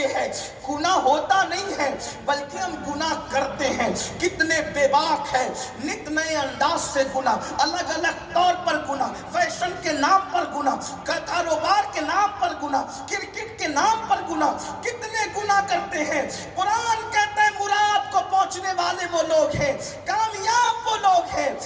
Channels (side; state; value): both; identical; correlation 1.00